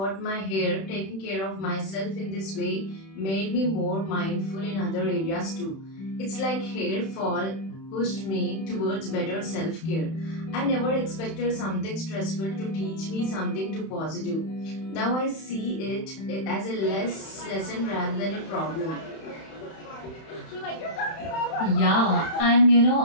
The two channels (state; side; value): late; right; 31 ms